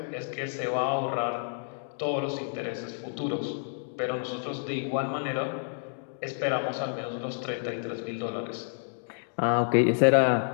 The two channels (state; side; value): silent; right; digital silence